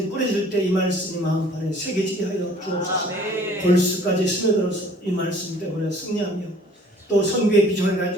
뿌려질 때 이 말씀이 마음판에 새겨지게 하여 주옵소서. 골수까지 스며들어서 이 말씀 때문에 승리하며 또 선교의 비전을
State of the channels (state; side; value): normal; both; correlation 0.54